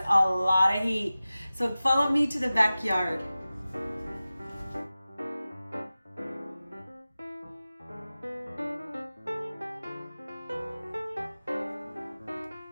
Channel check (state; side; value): inverted; both; correlation -0.96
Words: a lot of heat. So follow me to the backyard.